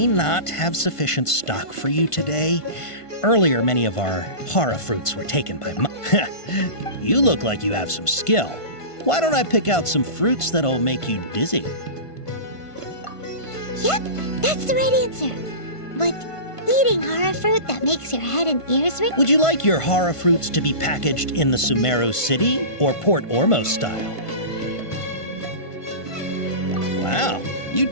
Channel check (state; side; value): late; right; 1.5 ms